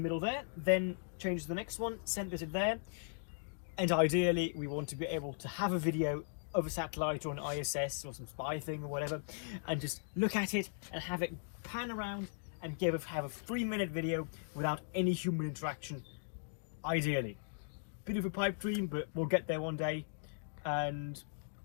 there, then change to the next one, send it there, and ideally we want to be able to have a video of a satellite or an ISS or some spy thing or whatever, and just look at it and have it pan around and have a 3-minute video without any human interaction, ideally. Bit of a pipe dream, but we'll get there one day, and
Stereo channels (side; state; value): right; silent; digital silence